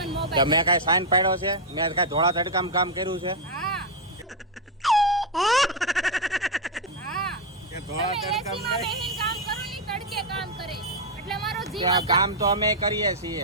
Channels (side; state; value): both; normal; correlation 0.00